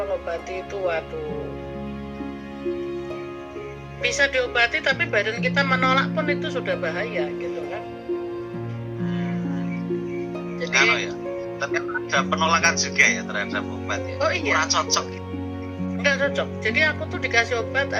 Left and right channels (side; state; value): both; identical; correlation 1.00